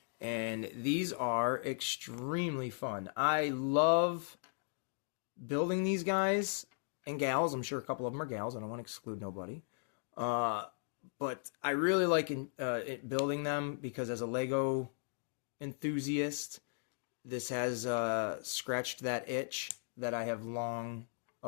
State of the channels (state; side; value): silent; right; digital silence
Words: And these are extremely fun. I love building these guys and gals. I'm sure a couple of them are gals. I don't want to exclude nobody. But I really like building them because as a Lego enthusiast, this has scratched that itch that I have long